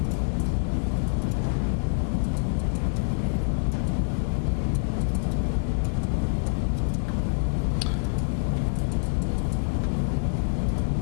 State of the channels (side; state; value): right; silent; digital silence